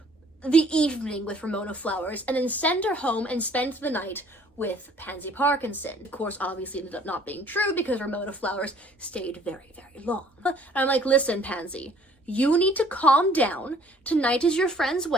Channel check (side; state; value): both; normal; correlation 0.57